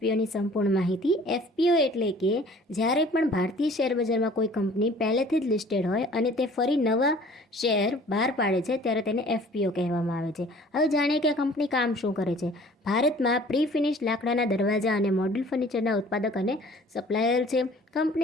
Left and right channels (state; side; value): normal; both; correlation 0.51